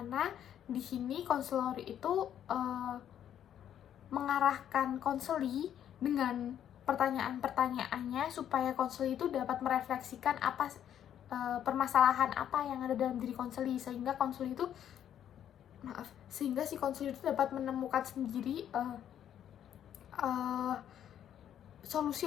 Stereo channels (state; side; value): quieter; right; 10.1 dB